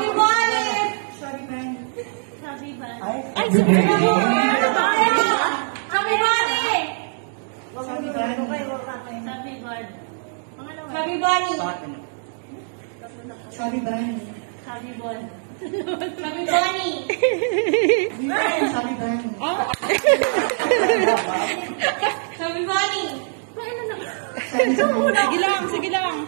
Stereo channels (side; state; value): left; silent; digital silence